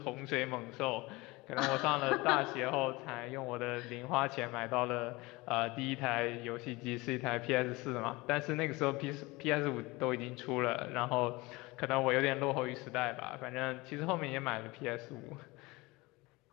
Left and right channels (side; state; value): right; quieter; 22.8 dB